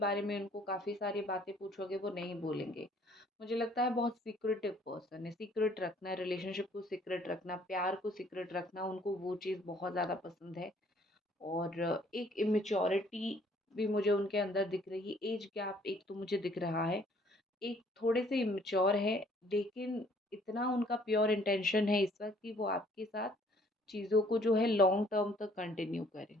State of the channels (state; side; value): normal; both; correlation 0.60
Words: में उनको काफ़ी सारी बातें पूछोगे वो नहीं बोलेंगे। मुझे लगता है बहुत सीक्रेटिव पर्सन है। सीक्रेट रखना, रिलेशनशिप को सीक्रेट रखना, प्यार को सीक्रेट रखना, उनको वो चीज़ बहुत ज़्यादा पसंद है। और एक इमेच्योरिटी भी मुझे उनके अंदर दिख रही है। एज गैप एक तो मुझे दिख रहा है, एक थोड़े से इमेच्योर है, लेकिन इतना उनका प्योर इंटेंशन है इस वक्त कि वो आपके साथ चीज़ों को जो है लॉन्ग टर्म तक कंटिन्यू करें।